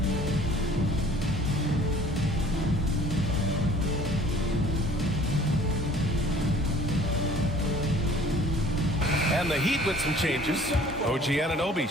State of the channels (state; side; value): normal; both; correlation 0.52